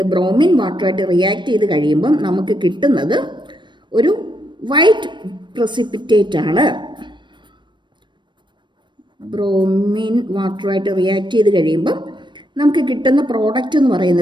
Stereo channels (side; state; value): left; late; 0.22 ms